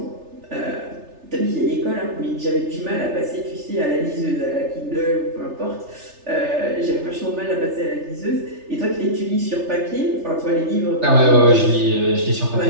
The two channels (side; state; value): left; late; 3.3 ms